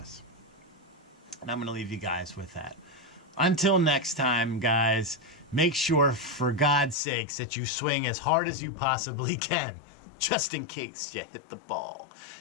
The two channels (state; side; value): drops out; right; at 7.0 s